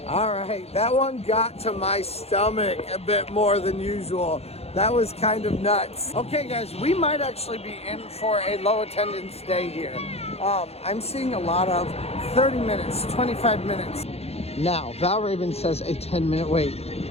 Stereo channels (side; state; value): right; late; 0.30 ms